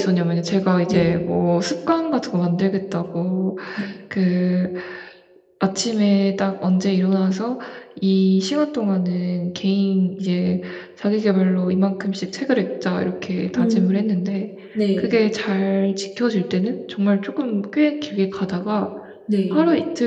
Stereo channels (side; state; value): both; identical; correlation 1.00